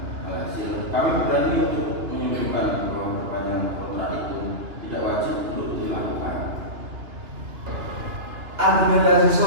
Alhasil, kami berani untuk menyimpulkan bahwa perpanjangan kontrak itu tidak wajib untuk dilakukan. Argumentasi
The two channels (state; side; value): late; left; 2.7 ms